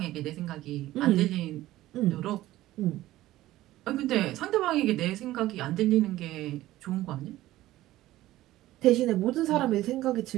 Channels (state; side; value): quieter; left; 15.7 dB